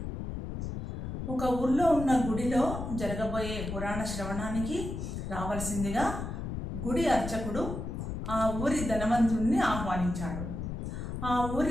ఒక ఊర్లో ఉన్న గుడిలో జరగబోయే పురాణ శ్రవణానికి రావాల్సిందిగా గుడి అర్చకుడు ఆ ఊరి ధనవంతుడిని ఆహ్వానించాడు. ఆ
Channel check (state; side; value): noise; left; rumble, 5 dB below the sound